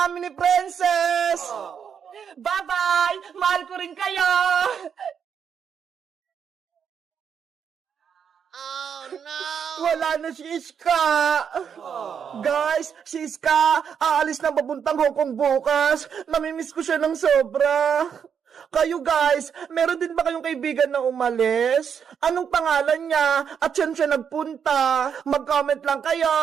ni Princess! Bye-bye! Mahal ko rin kayo! Oh no! Wala na si Iska! Guys, si Iska, aalis na papuntang Hong Kong bukas. Namimiss ko siya ng sobra. Kayo guys, meron din ba kayong kaibigan na umalis? Anong pangalan niya? At saan siya nagpunta? Mag-comment lang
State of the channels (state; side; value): quieter; left; 7.4 dB